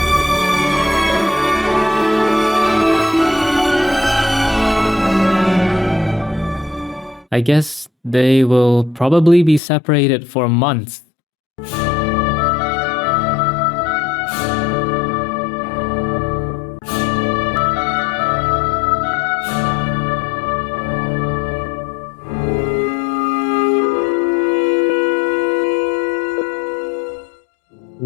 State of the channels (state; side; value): drops out; right; at 9.6 s